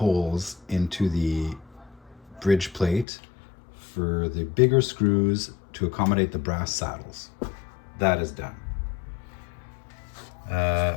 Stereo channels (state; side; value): drops out; right; at 3.1 s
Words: into the bridge plate for the bigger screws to accommodate the brass saddles. That is done.